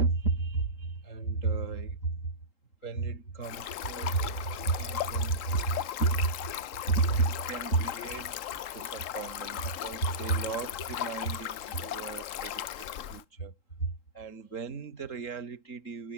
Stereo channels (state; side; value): late; right; 3.8 ms